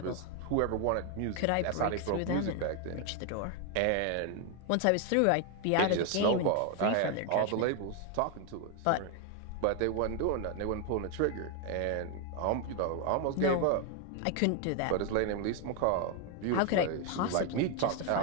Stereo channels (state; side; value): different; both; correlation 0.01